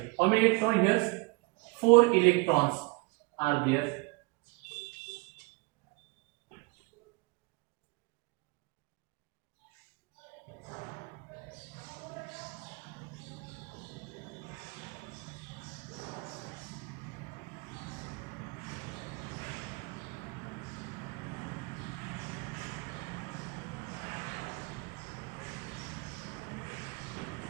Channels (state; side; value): quieter; left; 28.5 dB